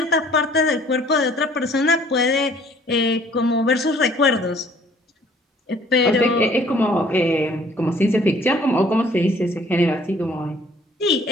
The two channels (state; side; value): normal; both; correlation 0.57